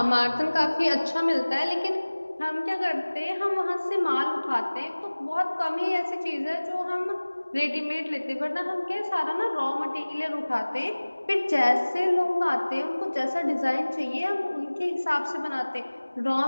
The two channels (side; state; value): both; inverted; correlation -1.00